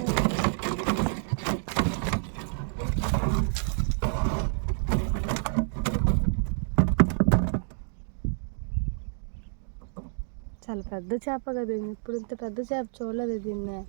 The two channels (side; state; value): left; silent; digital silence